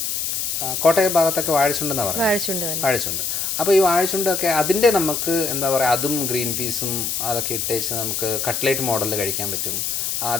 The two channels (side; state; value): left; noise; hiss, 1 dB below the sound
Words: കോട്ടയം ഭാഗത്തൊക്കെ വാഴച്ചുണ്ടെന്നാണ് പറയുന്നത്, വാഴച്ചുണ്ട്. അപ്പോൾ ഈ വാഴച്ചുണ്ടൊക്കെ അതിൻ്റെ നമുക്ക് എന്താ പറയുക, അതും ഗ്രീൻ പീസും അതൊക്കെ ഇട്ടേച്ച് നമുക്ക് കട്ട്ലേറ്റ് മോഡലിൽ കഴിക്കാൻ പറ്റും.